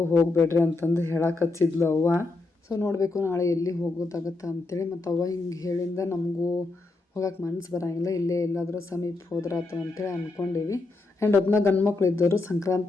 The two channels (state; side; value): quieter; right; 3.3 dB